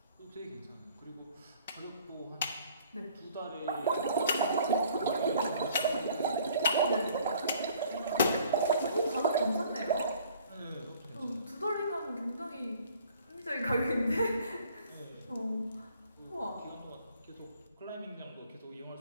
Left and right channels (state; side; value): inverted; both; correlation -0.56